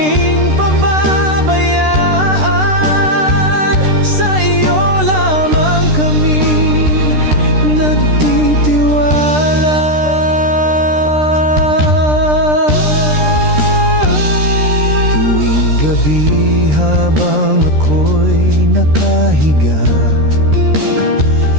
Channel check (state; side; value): late; left; 13 ms